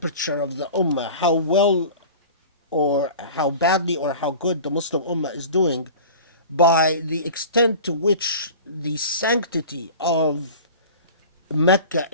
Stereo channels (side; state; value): both; inverted; correlation -0.38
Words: of the ummah, how well or how badly or how good the Muslim ummah is doing, by the extent to which the sanctity of Mecca